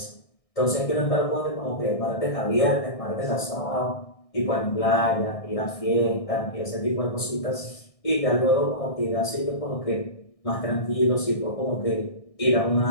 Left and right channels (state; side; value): late; right; 1.6 ms